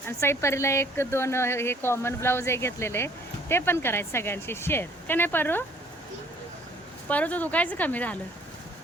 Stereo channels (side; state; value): both; normal; correlation 0.58